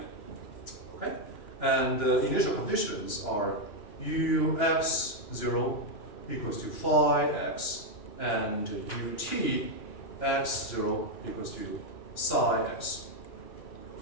Okay, and the initial conditions are ux0 equals to phi x, and ut x0 equals to psi x.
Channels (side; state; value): right; late; 2.9 ms